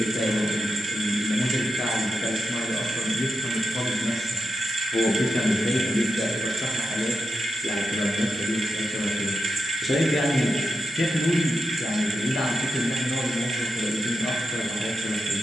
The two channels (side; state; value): both; normal; correlation 0.88